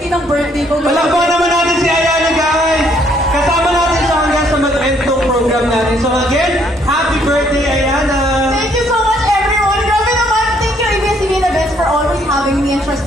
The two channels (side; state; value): both; normal; correlation 0.67